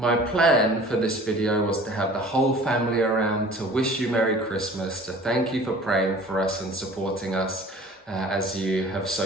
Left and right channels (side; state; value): both; normal; correlation 0.46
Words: plan for this video was to have the whole family around to wish you Merry Christmas, to thank you for praying for us and supporting us as you have